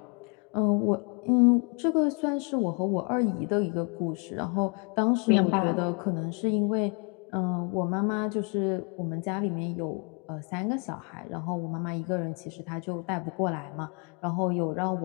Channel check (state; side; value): quieter; right; 34.5 dB